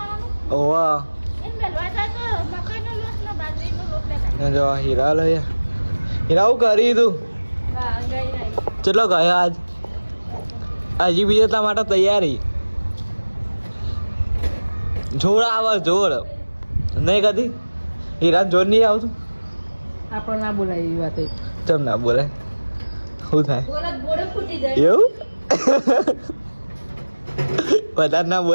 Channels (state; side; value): inverted; both; correlation -1.00